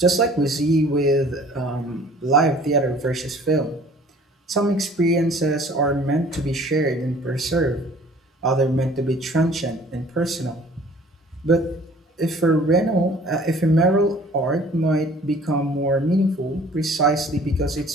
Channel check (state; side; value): normal; both; correlation 0.51